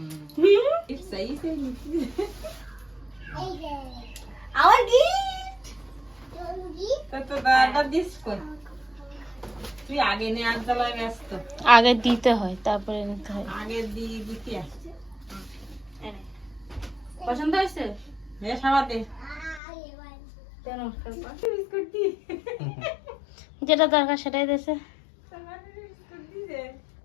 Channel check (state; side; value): drops out; right; at 19.6 s